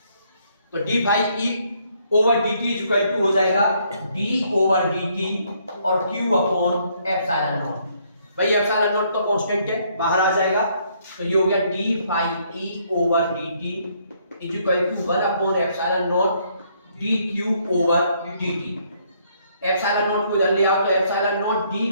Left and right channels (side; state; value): both; inverted; correlation -0.69